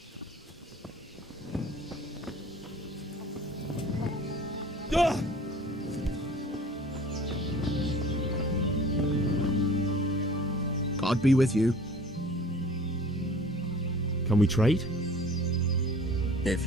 God be with you. Can we trade?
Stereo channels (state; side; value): normal; both; correlation 0.47